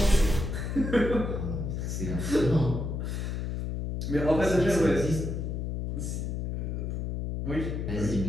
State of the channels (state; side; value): noise; left; hum, 3 dB below the sound